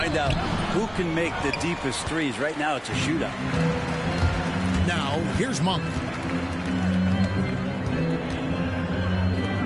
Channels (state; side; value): identical; both; correlation 1.00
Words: out who can make the deepest threes. Right now, it's a shootout. Now, here's Monk.